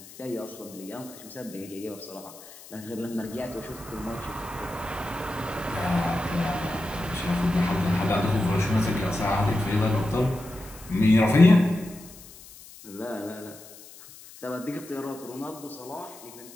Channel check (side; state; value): left; noise; hiss, 19 dB below the sound